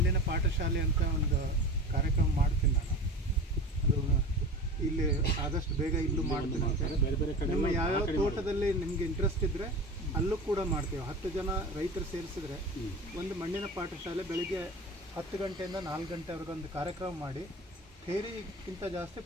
ಪಾಠಶಾಲೆ ಅಂತ ಒಂದು ಕಾರ್ಯಕ್ರಮ ಮಾಡ್ತೀನಿ ನಾನು. ಅದು ಇಲ್ಲಿ ಆದಷ್ಟು ಬೇಗ ಇಲ್ಲೂ ಮಾಡ್ತೀನಿ ಅಂತ. ನಿಮ್ಮ ಯಾವ್ಯಾವ ತೋಟದಲ್ಲಿ ನಿಮಗೆ ಇಂಟ್ರೆಸ್ಟ್ ಇದ್ದರೆ ಅಲ್ಲೂ ಕೂಡ ಮಾಡ್ತೀವಿ. 10 ಜನ ರೈತರು ಸೇರಿಸಿದ್ರೆ ಒಂದು ಮಣ್ಣಿನ ಪಾಠಶಾಲೆ ಬೆಳಿಗ್ಗೆ 10 ಗಂಟೆಯಿಂದ 4 ಗಂಟೆವರೆಗೆ ಒಂದು ಕಾರ್ಯಕ್ರಮ ಮಾಡಿ ಥಿಯರಿಗಿಂತ ಜಾಸ್ತಿ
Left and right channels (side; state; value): both; normal; correlation 0.32